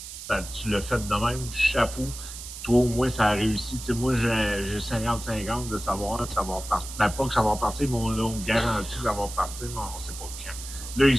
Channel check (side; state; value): right; noise; hiss, 11 dB below the sound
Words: Ben, tu l'as fait de même. Chapeau. Toi, au moins, ça a réussi. Tu sais, moi, j'ai 50-50 de savoir que ça va repartir. Ben, pas que ça va repartir, mais on me garantit que ça va repartir, mais on ne sait pas quand. Là, ils